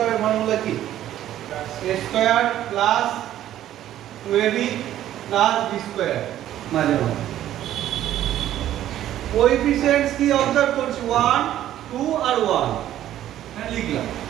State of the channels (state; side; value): quieter; left; 12.4 dB